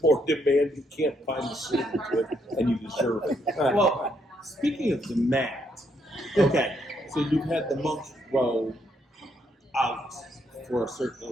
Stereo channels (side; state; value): both; normal; correlation 0.74